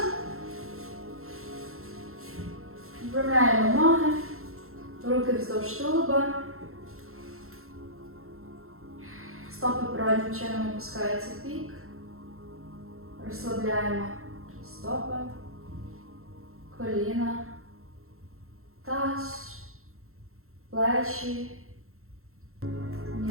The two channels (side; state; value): left; late; 0.62 ms